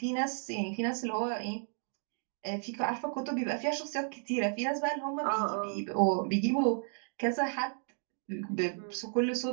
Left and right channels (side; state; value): left; silent; 56 dB below the other